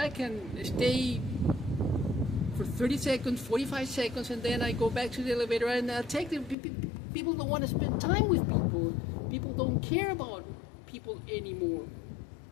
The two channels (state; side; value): drops out; right; at 6.6 s